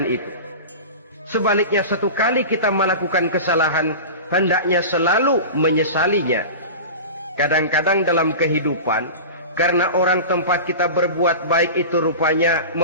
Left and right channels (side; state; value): both; inverted; correlation -0.30